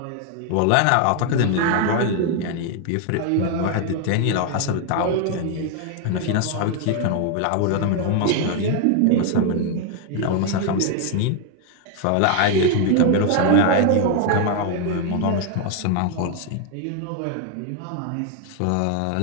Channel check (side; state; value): both; different; correlation 0.00